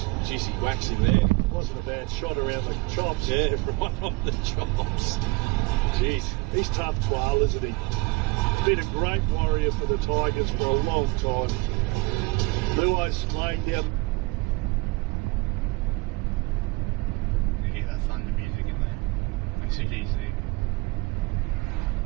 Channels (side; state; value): left; quieter; 24.2 dB